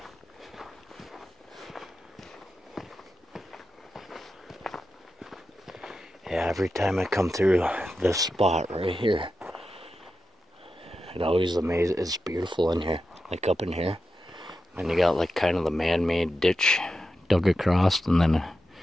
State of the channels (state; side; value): normal; both; correlation 0.90